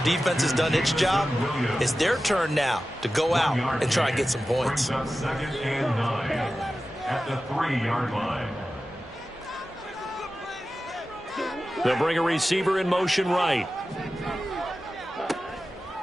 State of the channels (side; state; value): both; normal; correlation 0.94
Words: defense has done its job, it's their turn now to go out and try and get some points. 2nd and 9 at the 3-yard line. They'll bring a receiver in motion right.